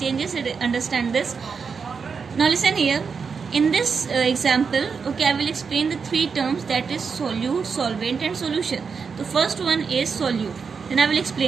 Understand this. Now listen here. In this example, okay, I will explain the three terms, that is solute, solvent and solution. The first one is solute. Then I will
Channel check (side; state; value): left; quieter; 5.6 dB